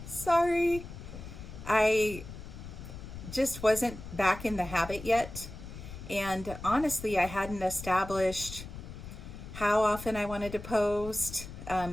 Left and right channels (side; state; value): left; noise; rumble, 12 dB below the sound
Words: Sorry. I just wasn't back in the habit yet. And honestly, I hadn't established how often I wanted to post,